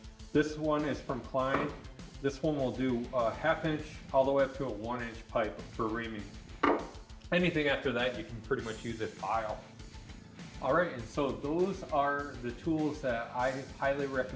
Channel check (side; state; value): both; identical; correlation 1.00